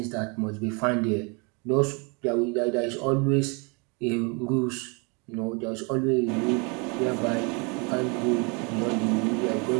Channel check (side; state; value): left; quieter; 32.2 dB